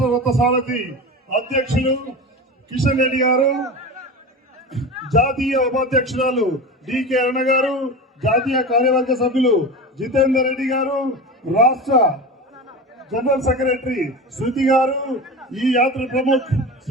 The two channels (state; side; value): normal; both; correlation 0.28